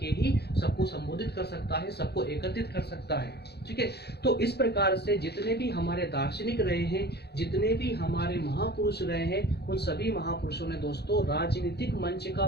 ही सबको संबोधित कर सकता है, सबको एकत्रित कर सकता है, ठीक है। तो इस प्रकार से जितने भी हमारे दार्शनिक रहे हैं, जितने भी हमारे महापुरुष रहे हैं, उन सभी महापुरुषों ने दोस्तों राजनीतिक मंच का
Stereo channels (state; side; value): late; right; 0.48 ms